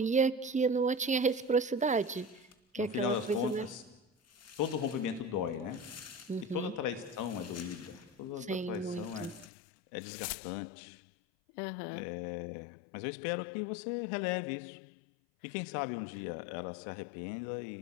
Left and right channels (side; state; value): right; drops out; at 9.5 s